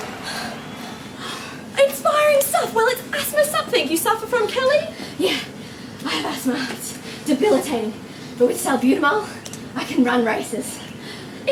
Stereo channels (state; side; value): identical; both; correlation 1.00